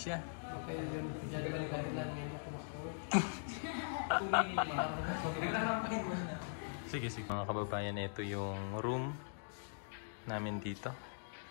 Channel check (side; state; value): right; silent; digital silence